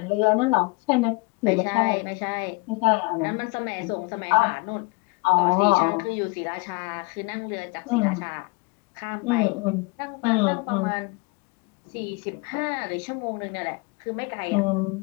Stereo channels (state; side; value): quieter; right; 28.2 dB